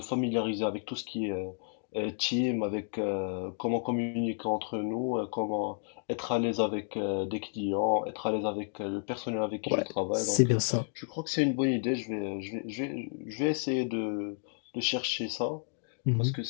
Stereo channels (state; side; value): silent; right; 57 dB below the other